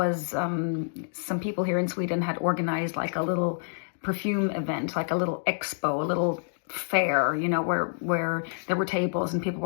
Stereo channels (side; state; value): right; silent; digital silence